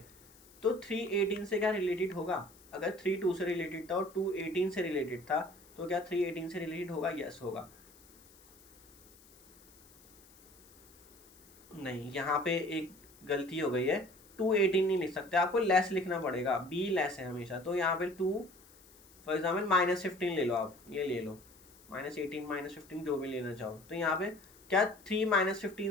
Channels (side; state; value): left; noise; hiss, 25 dB below the sound